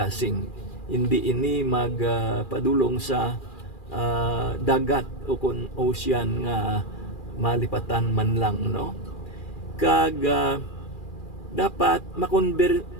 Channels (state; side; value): late; right; 2.4 ms